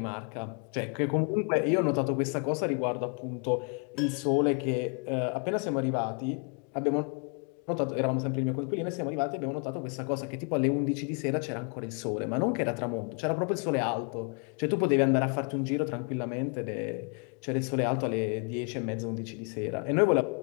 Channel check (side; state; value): right; quieter; 36.1 dB